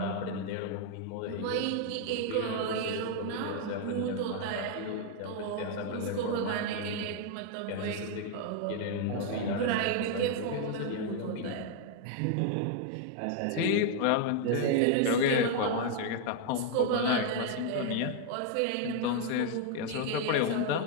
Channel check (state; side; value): different; both; correlation 0.00